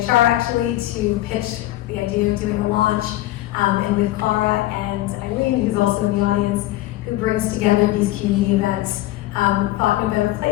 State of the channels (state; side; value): quieter; right; 16.4 dB